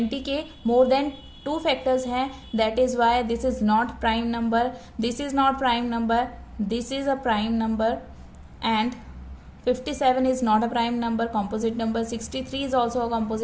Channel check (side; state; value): both; identical; correlation 1.00